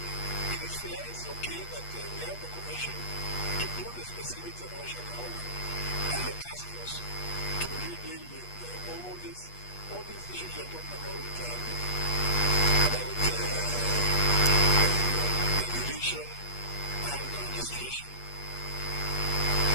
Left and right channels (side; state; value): right; late; 8.3 ms